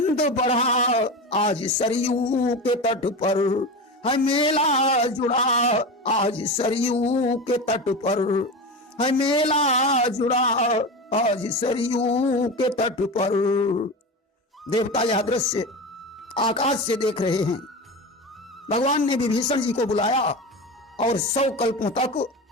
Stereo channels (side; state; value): both; normal; correlation 0.25